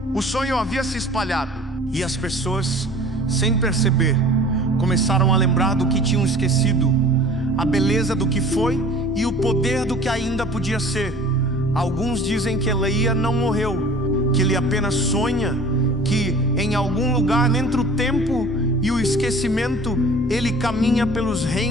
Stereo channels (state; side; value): normal; both; correlation 0.46